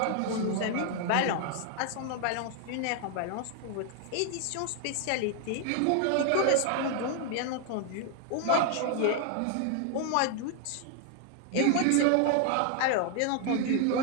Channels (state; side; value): different; both; correlation 0.00